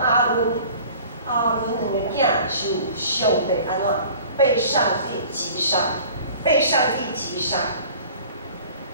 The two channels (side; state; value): both; inverted; correlation -0.46